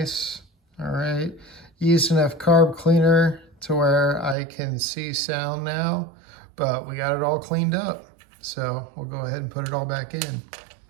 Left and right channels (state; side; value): drops out; left; at 4.4 s